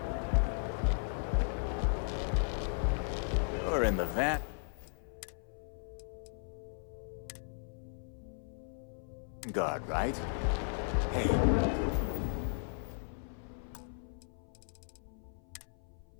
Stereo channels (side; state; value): right; silent; 54 dB below the other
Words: You're in the van. Guard, right? Hey,